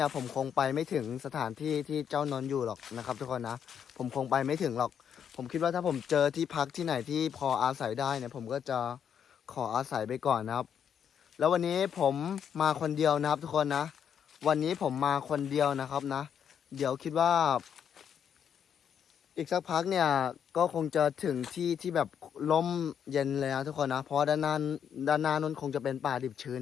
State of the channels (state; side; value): quieter; right; 8.2 dB